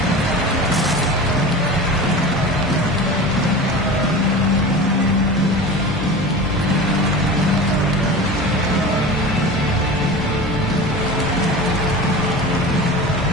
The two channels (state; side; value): normal; both; correlation 0.33